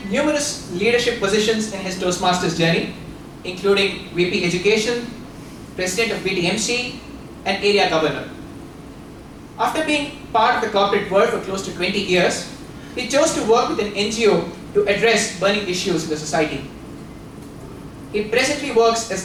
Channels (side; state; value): both; identical; correlation 1.00